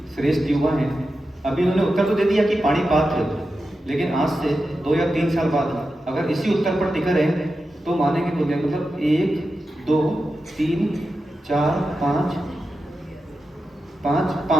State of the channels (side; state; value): both; normal; correlation 0.91